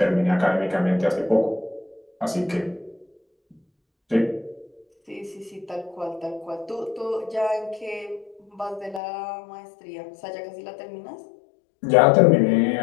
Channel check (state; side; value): drops out; right; at 9.0 s